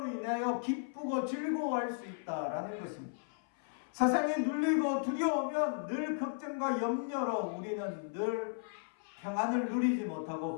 인하여 기쁘고 즐거워할 수 있다라는 것입니다. 세상에 눌리고 두려우면 늘 걱정과 염려로 우리는 늘 평안을 누리지 못하고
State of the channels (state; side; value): silent; right; 54 dB below the other